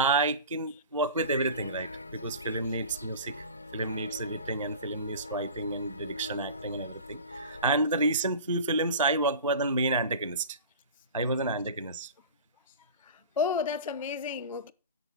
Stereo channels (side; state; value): both; inverted; correlation -0.36